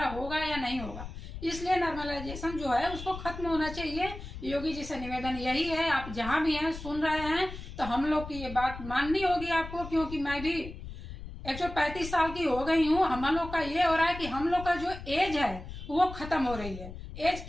होगा या नहीं होगा। इसलिए नॉर्मलाइजेशन जो है उसको खत्म होना चाहिए। योगी जी से निवेदन यही है, आप जहां भी हैं सुन रहे हैं तो हम लोग की ये बात माननी होगी आपको, क्योंकि मैं भी 135 साल की हो गई हूँ। हम लोग का ये हो रहा है कि हम लोग का जो एज है वो खत्म हो रही है। एज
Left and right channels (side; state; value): left; noise; rumble, 11 dB below the sound